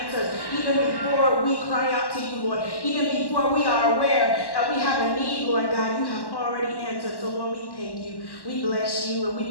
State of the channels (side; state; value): right; late; 1.1 ms